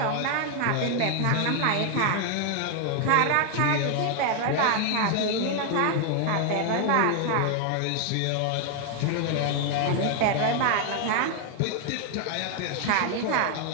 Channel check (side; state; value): both; different; correlation 0.00